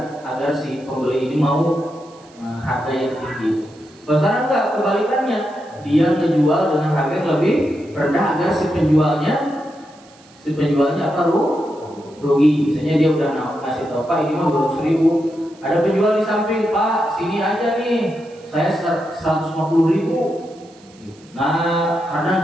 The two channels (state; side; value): noise; right; hiss, 27 dB below the sound